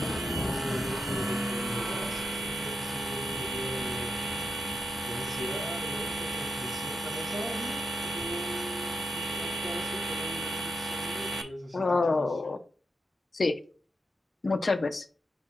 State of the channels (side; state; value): both; normal; correlation 0.84